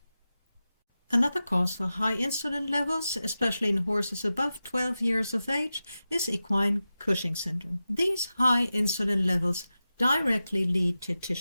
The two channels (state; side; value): inverted; both; correlation -0.93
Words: Another cause for high insulin levels, especially in horses above 12 years of age, is equine Cushing syndrome. These high insulin levels directly lead to